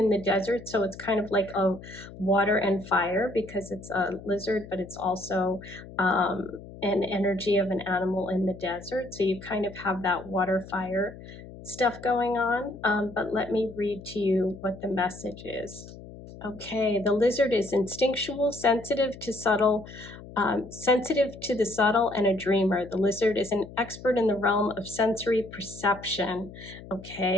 the desert, so it's kind of like a water and fire because it's a lizard, but it's also an energy of an animal in the desert. So you kind of have that water fire stuff going on. But let me read to you what the message is. Okay, the lizard is instinctual, sensitive to the subtle and a dreamer. The lizard is an expert in the realm of sensory perception.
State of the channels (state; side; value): noise; left; hum, 16 dB below the sound